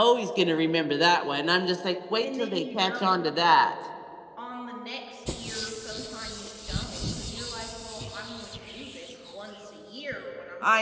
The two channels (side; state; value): both; identical; correlation 1.00